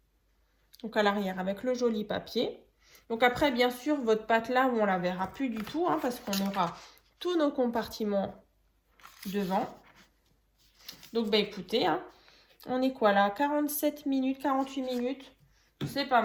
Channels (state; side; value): identical; both; correlation 1.00